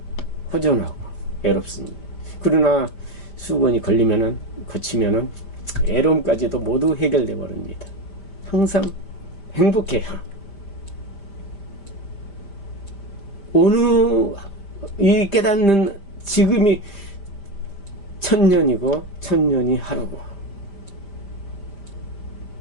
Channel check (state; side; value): late; right; 5.0 ms